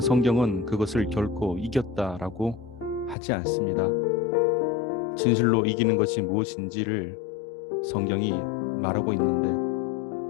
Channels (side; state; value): right; drops out; at 3.2 s